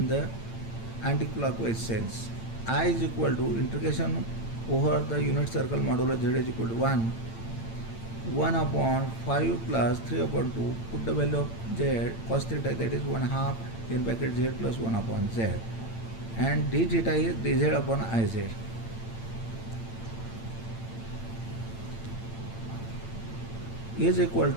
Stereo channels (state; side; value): late; right; 8.9 ms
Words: the anti-clockwise sense. I is equal to integration over the unit circle modulo z is equal to 1 upon 5 plus 3 upon 2, put the value of z cos theta, that is 1 half in bracket z plus 1 upon z, and d theta is dz upon iz. Is equal